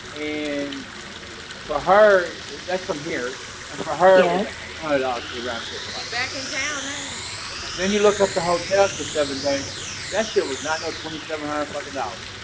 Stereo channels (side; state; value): both; identical; correlation 1.00